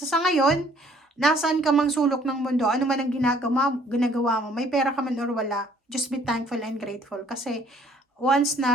sa ngayon, nasaan ka mang sulok ng mundo, ano man ang ginagawa mo, may pera ka man or wala, just be thankful and grateful. Kasi, once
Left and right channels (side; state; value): both; normal; correlation 0.60